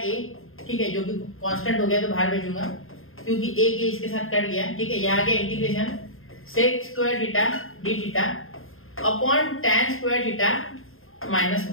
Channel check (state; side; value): late; right; 0.61 ms